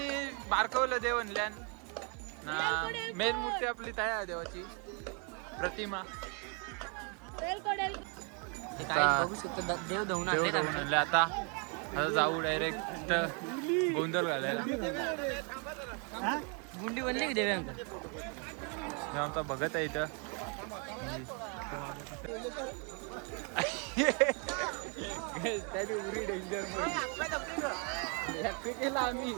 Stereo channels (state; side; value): quieter; left; 36.4 dB